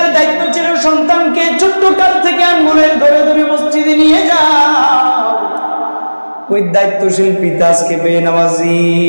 দায়িত্ব ছিল সন্তানকে ছোট্ট কাল থেকে আঙ্গুলের ধরে ধরে মসজিদে নিয়ে যাও, ওই দায়িত্বশীল পিতা আজকে বেনামাজি,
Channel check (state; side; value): inverted; both; correlation -1.00